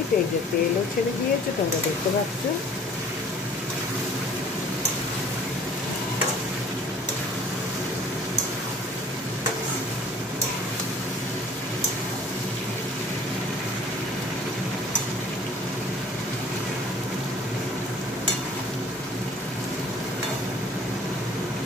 এই যে তেলও ছেড়ে দিয়েছে, তোমরা দেখতে পাচ্ছ।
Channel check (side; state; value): both; normal; correlation 0.51